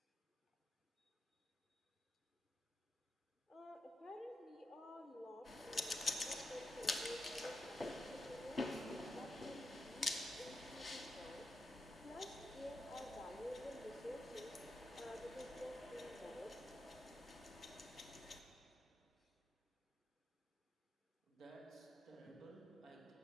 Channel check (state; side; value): normal; both; correlation 0.85